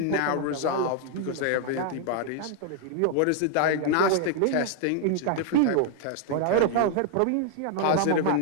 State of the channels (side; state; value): both; different; correlation 0.00